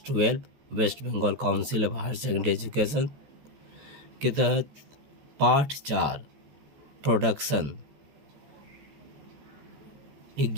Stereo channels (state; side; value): late; left; 14 ms